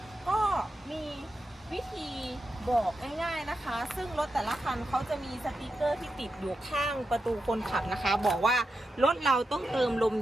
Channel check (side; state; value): both; normal; correlation 0.88